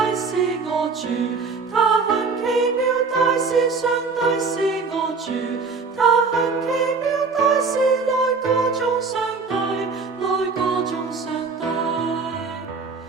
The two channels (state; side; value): quieter; left; 4.6 dB